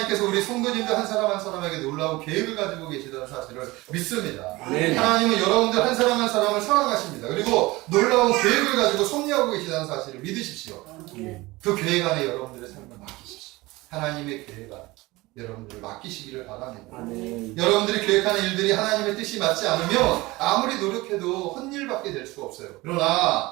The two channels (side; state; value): left; quieter; 21.0 dB